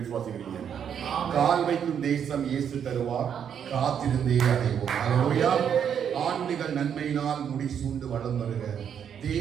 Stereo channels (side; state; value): left; quieter; 8.3 dB